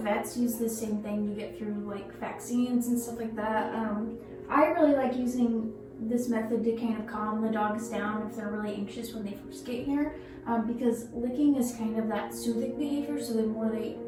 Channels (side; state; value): both; identical; correlation 1.00